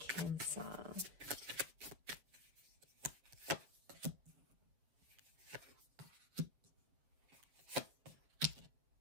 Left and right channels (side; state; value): left; late; 7.1 ms